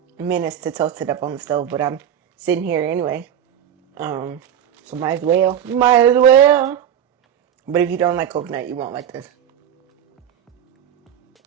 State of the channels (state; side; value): quieter; left; 9.7 dB